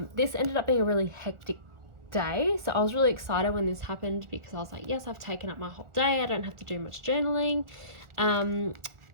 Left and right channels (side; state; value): left; late; 1.4 ms